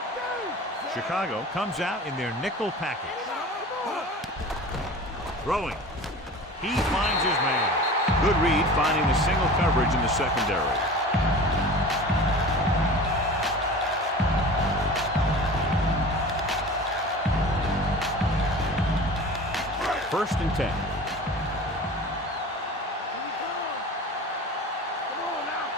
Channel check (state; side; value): normal; both; correlation 0.38